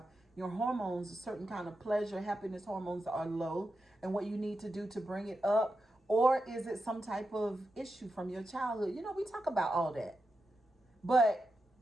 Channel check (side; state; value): both; normal; correlation 0.88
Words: your hormones, a certain kind of pleasure, happiness hormones are low, and what you need to do to bring it up, or is it some type of issue from your childhood? We talk about all that. But